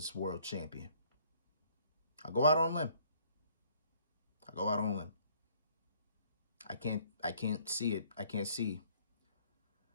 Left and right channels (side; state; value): both; inverted; correlation -0.61